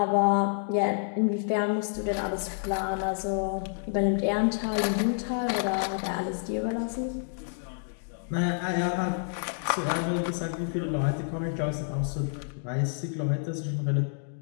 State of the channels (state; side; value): silent; right; digital silence